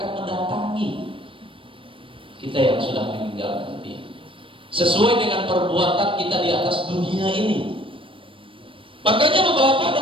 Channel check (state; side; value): late; left; 0.25 ms